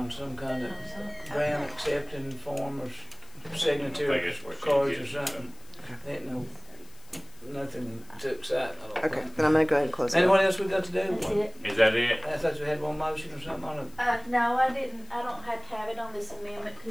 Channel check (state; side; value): noise; left; hiss, 25 dB below the sound